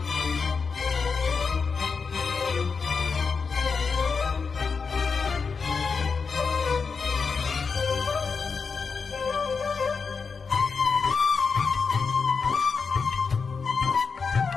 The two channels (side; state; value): right; quieter; 5.2 dB